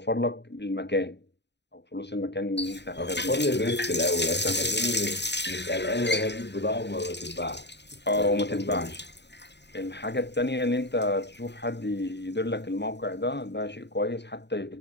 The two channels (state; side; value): late; right; 0.50 ms